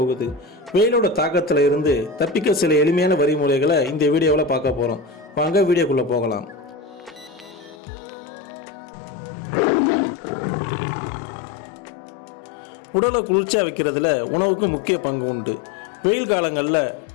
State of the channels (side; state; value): right; drops out; at 7.8 s